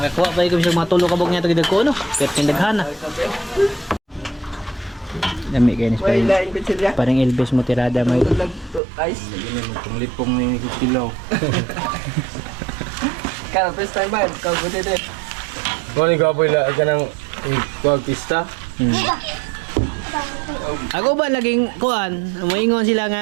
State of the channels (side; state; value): left; drops out; at 8.8 s